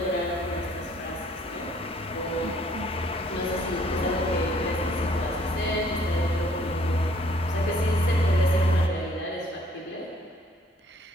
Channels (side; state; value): both; normal; correlation 0.61